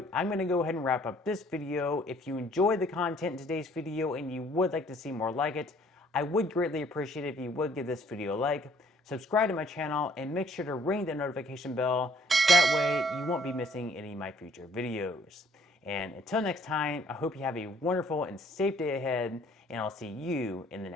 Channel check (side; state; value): both; normal; correlation 0.60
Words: I'm going to go ahead and wrap up this video. If you enjoyed the content in today's video and you would like to see more like it, I would greatly appreciate it if you would give this video a like, subscribe to my channel, and make sure to ring the notification bell. That way you won't be missing any of my future videos. And until next time, I hope you have a wonderful and safe day ahead, and I'll see you in the